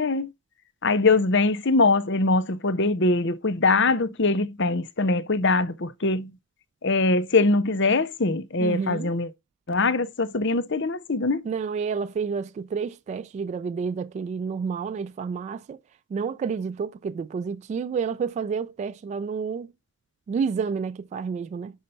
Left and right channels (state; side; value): normal; both; correlation 0.05